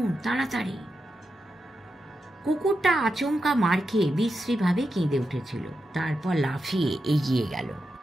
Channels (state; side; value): normal; both; correlation 0.88